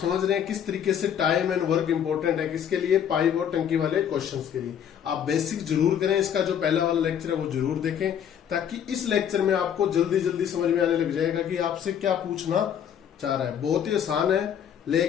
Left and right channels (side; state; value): right; quieter; 8.9 dB